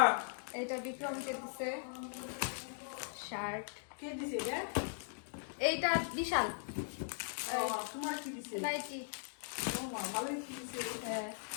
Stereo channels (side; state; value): right; silent; digital silence